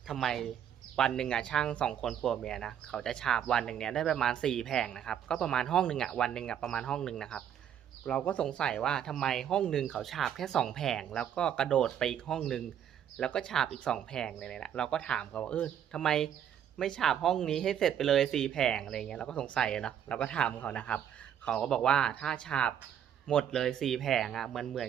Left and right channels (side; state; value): left; quieter; 9.4 dB